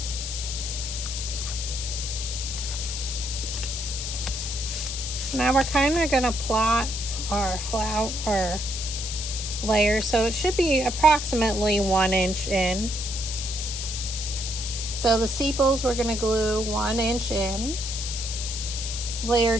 Now we're kind of going to plot our flower layer, so it should be approximately 1 inch in. So the sepals we're going to glue 1 inch in. Layer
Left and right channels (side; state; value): left; noise; hiss, 5 dB below the sound